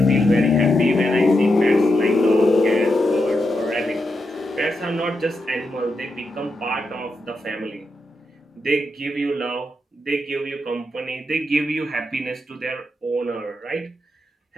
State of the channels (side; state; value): both; normal; correlation 0.85